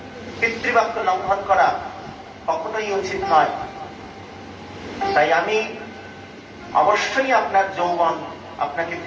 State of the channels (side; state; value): both; identical; correlation 1.00